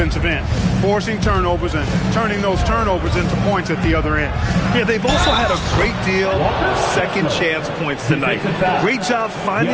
end, forcing turnovers and turning those turnovers into points at the other end. Yeah, they've also had a great deal of second chance points tonight. Great job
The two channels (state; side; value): identical; both; correlation 1.00